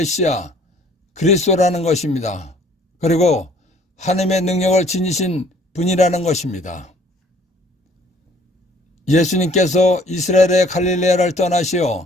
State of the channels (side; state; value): both; normal; correlation 0.57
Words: 그리스도라는 것입니다. 그리고 하느님의 능력을 지니신 분이라는 것입니다. 예수님께서 이스라엘의 갈릴레아를 떠나시어